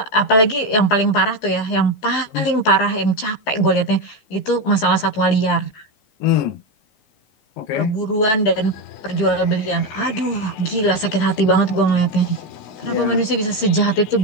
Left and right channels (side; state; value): right; late; 15 ms